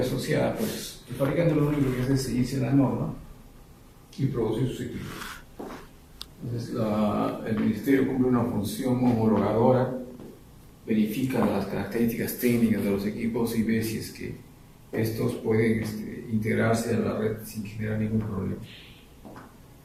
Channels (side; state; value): both; identical; correlation 1.00